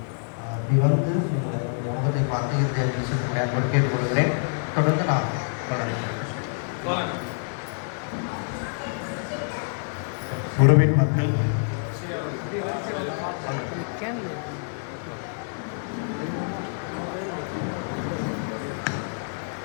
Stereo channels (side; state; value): right; silent; digital silence